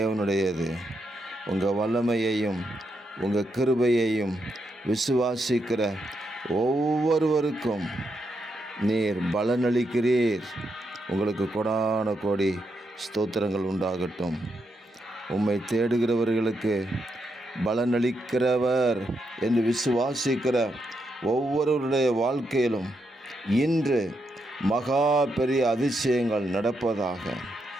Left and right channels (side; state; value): both; normal; correlation 0.82